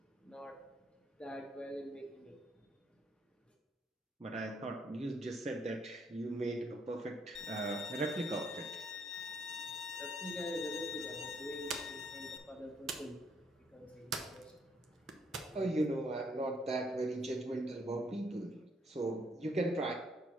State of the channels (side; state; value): both; normal; correlation 0.70